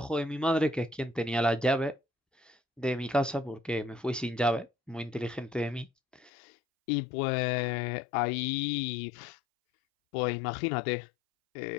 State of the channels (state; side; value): drops out; right; at 6.3 s